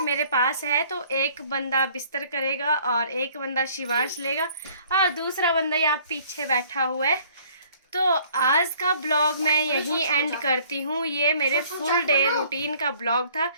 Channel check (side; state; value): both; inverted; correlation -0.57